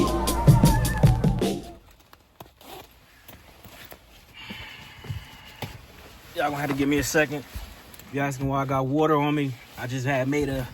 Y'all gonna have to give me a second. You asking why I got water on me? I just had made a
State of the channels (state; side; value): identical; both; correlation 1.00